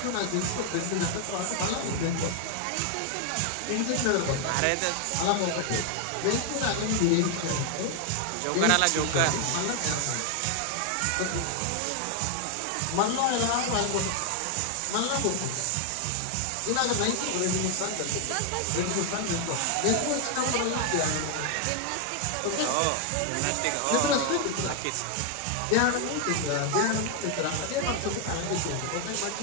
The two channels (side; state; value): both; different; correlation 0.00